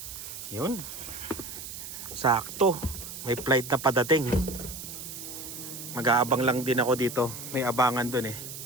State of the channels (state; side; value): noise; right; hiss, 10 dB below the sound